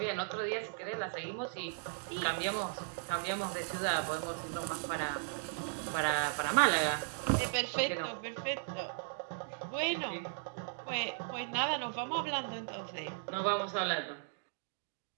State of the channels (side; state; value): left; silent; digital silence